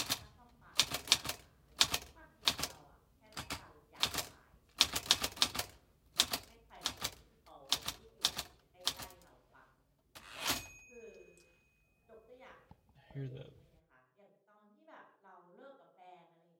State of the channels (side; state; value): both; identical; correlation 1.00